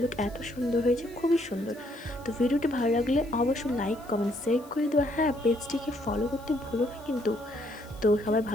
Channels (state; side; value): noise; left; hiss, 24 dB below the sound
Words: লুক এত সুন্দর হয়েছে, খুবই সুন্দর। তো ভিডিওটি ভালো লাগলে অবশ্যই লাইক কমেন্ট শেয়ার করে দেবো। হ্যাঁ, পেজটিকে ফলো করতে ভুলো না কিন্তু। তো সবাই